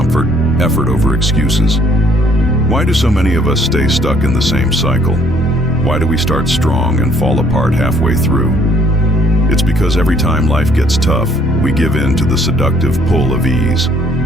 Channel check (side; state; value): both; normal; correlation 0.63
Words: effort over excuses. Why do so many of us stay stuck in the same cycle? Why do we start strong and fall apart halfway through? It's because every time life gets tough, we give in to the seductive pull of ease.